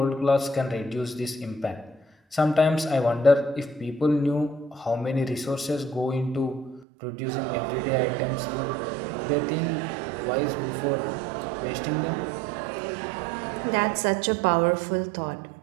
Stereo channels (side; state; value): left; drops out; at 6.9 s